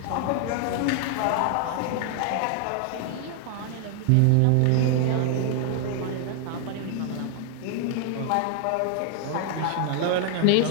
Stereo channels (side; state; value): both; different; correlation 0.00